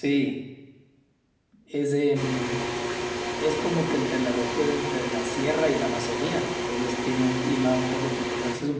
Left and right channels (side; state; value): both; identical; correlation 1.00